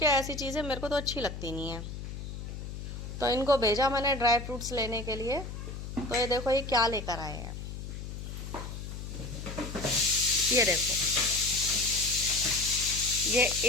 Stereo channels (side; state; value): left; noise; hum, 8 dB below the sound